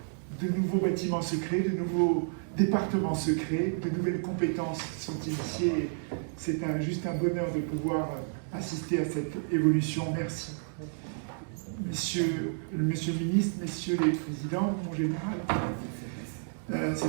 de nouveaux bâtiments se créent, de nouveaux départements se créent, de nouvelles compétences sont initiées. C'est juste un bonheur de pouvoir assister à cette évolution. Merci. Monsieur le ministre, messieurs les présidents, mon général,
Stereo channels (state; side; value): silent; left; digital silence